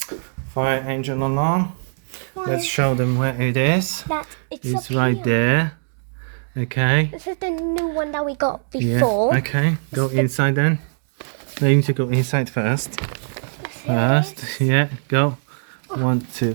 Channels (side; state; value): left; silent; digital silence